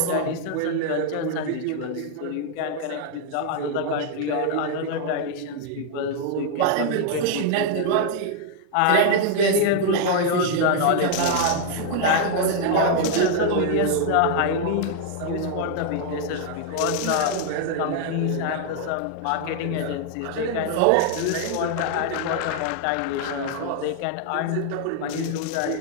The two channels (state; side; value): different; both; correlation 0.00